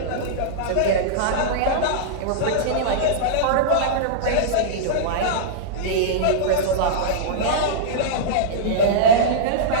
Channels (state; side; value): different; both; correlation -0.03